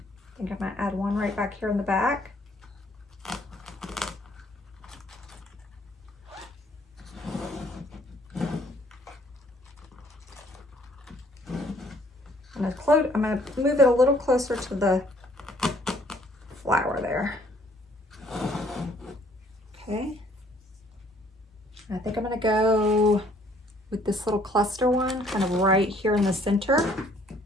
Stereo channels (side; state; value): both; normal; correlation 0.61